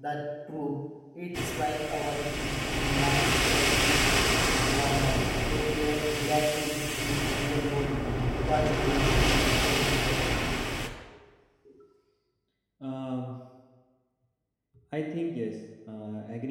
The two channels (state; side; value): identical; both; correlation 1.00